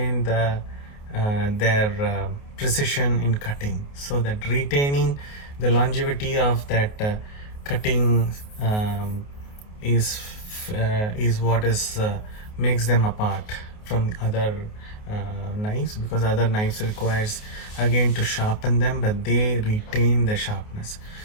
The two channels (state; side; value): late; right; 28 ms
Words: their precision in cutting, so that retaining the longevity of that cutting is what is makes them apart from other knives, because other knives requires again to sharpen them, but they retain the sharpness.